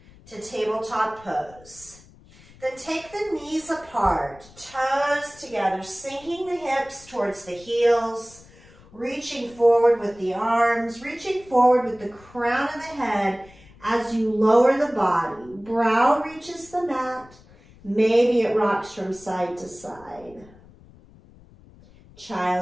to tabletop pose. Then take the knees apart, toes together, sinking the hips towards the heels, reaching forward with the arms, reaching forward with the crown of the head as you lower the body. Brow reaches the mat. Maybe it rocks from side to side.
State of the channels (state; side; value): noise; left; rumble, 24 dB below the sound